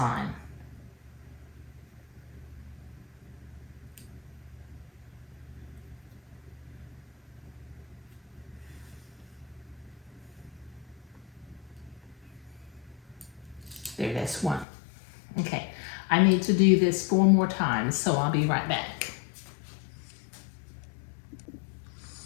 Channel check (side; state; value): right; drops out; at 14.7 s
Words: There, that's one. Okay, I need to do this 4 more times, so I'll be right back.